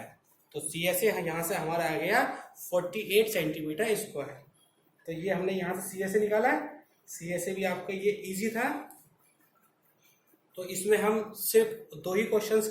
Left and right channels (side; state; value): both; identical; correlation 1.00